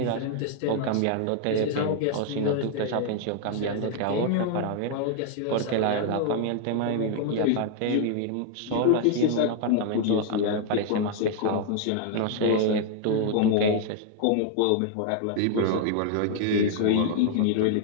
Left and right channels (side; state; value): both; different; correlation 0.00